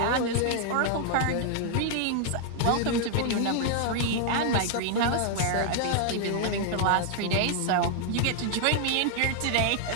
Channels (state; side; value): different; both; correlation 0.00